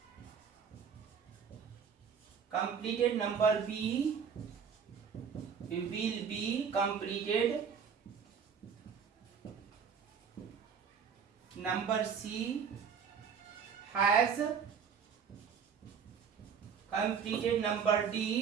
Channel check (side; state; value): left; quieter; 6.9 dB